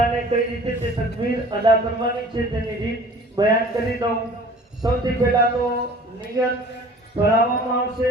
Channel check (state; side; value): normal; both; correlation 0.47